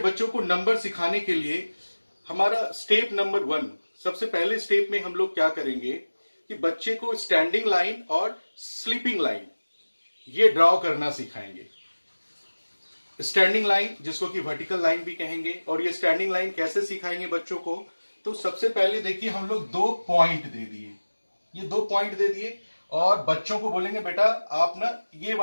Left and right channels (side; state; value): both; inverted; correlation -1.00